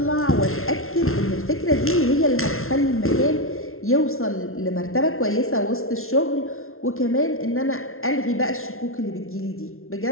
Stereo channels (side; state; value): right; late; 0.62 ms